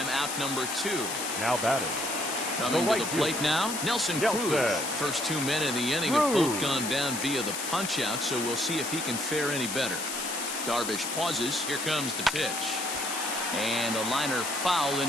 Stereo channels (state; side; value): noise; left; hiss, 4 dB below the sound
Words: out number 2. Now batting. Coming to the plate now, Nelson Cruz. First 2 men in the inning have both gone down via the punch-out, so we'll see if he can fare any better. Darvish pauses. Here comes the pitch. And a liner foul